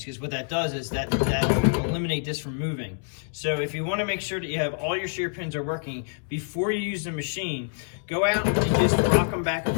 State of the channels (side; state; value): right; silent; digital silence